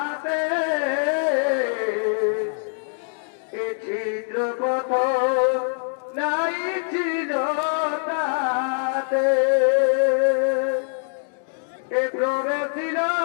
এ ছিদ্রপথ নাই ছিল তাতে এ প্রবেশিল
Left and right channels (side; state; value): right; silent; digital silence